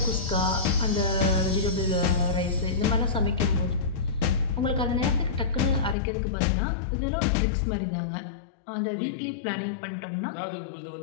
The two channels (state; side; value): drops out; right; at 6.0 s